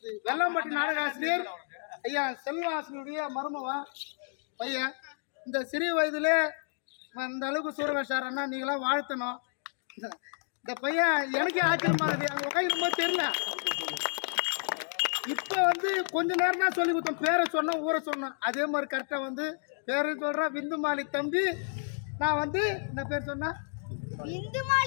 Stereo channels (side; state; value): right; silent; digital silence